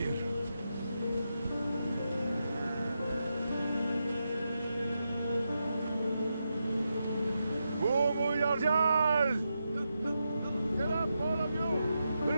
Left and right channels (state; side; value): inverted; both; correlation -0.86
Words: Get up, all of you!